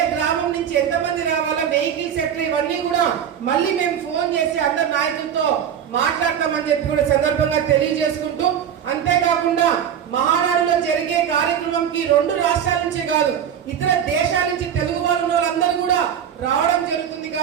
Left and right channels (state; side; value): quieter; left; 8.9 dB